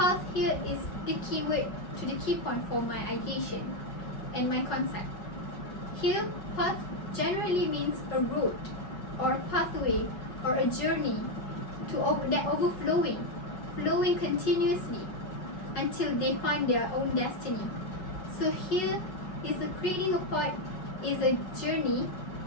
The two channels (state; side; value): late; right; 5.4 ms